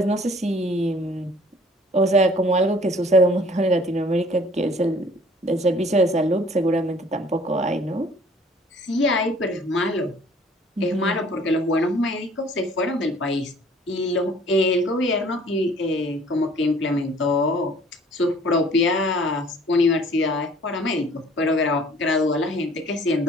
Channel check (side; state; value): both; normal; correlation 0.54